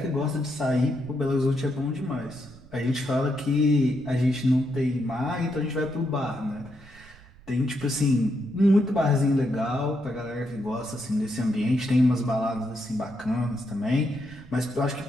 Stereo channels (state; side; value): noise; right; rumble, 23 dB below the sound